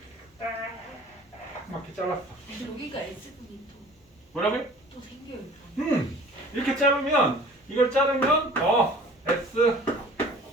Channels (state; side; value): normal; both; correlation 0.47